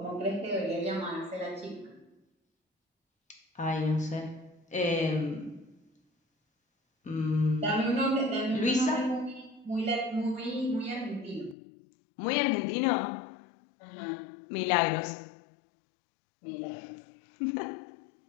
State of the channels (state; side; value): drops out; right; at 11.6 s